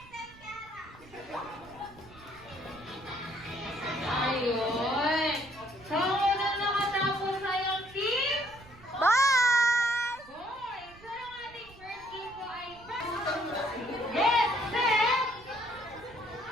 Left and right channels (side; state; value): right; noise; rumble, 23 dB below the sound